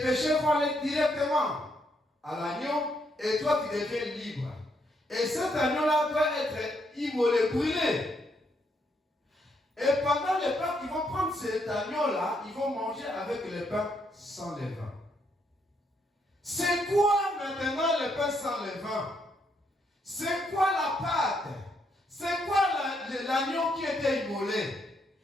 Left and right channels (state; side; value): normal; both; correlation 0.75